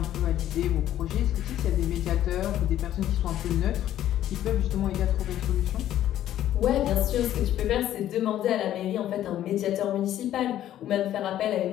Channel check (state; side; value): quieter; right; 12.2 dB